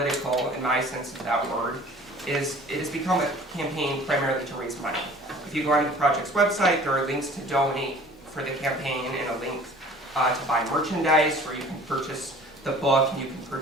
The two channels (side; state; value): both; normal; correlation 0.48